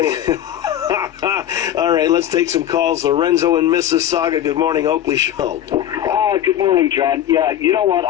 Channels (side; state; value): right; quieter; 11.3 dB